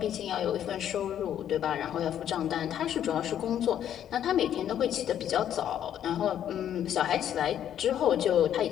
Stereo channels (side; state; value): right; quieter; 10.3 dB